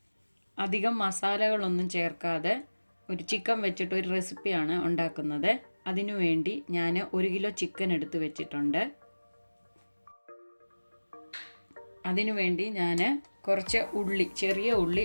അധികം മസാലകളൊന്നും ചേർക്കാതെ ഒരു ചിക്കൻ വെച്ചിട്ട് ഒരു റെസിപ്പിയാണ് ഉണ്ടാക്കുന്നത്. അതിനുവേണ്ടി ഞാൻ 1 കിലോ ചിക്കൻ എടുത്ത് വെച്ചിട്ടുണ്ട്. അതിനുവേണ്ടി ഞാൻ കുറച്ച് ഉള്ളി, ചെറിയ ഉള്ളി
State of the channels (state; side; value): inverted; both; correlation -1.00